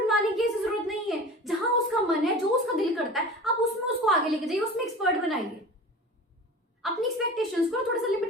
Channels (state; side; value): normal; both; correlation 0.36